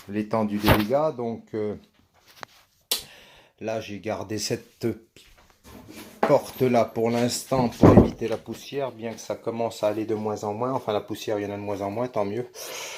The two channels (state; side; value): identical; both; correlation 1.00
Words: l'étendue des dégâts. Donc là, j'ai gardé cette porte là pour l'instant pour éviter la poussière, bien que ça commence à aller de moins en moins. Enfin, la poussière, il y en a de moins en moins, tant mieux.